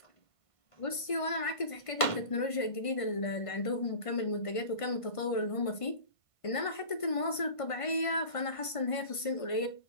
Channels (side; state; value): right; late; 1.5 ms